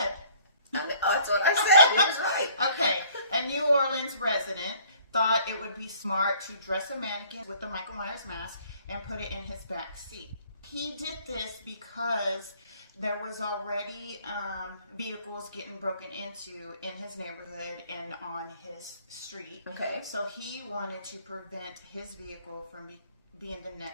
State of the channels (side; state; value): both; inverted; correlation -0.57